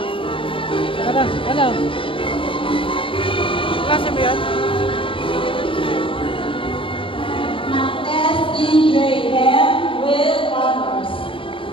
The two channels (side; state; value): right; late; 0.25 ms